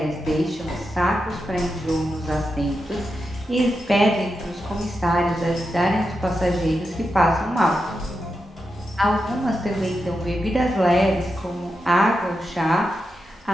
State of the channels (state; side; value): normal; both; correlation 0.88